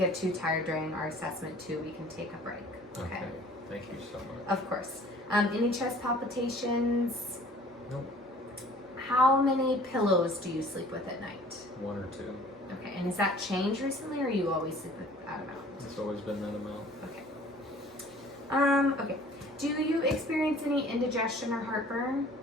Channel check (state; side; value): normal; both; correlation 0.51